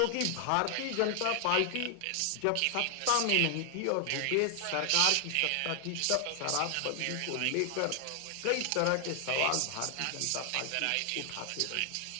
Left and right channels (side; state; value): both; different; correlation 0.00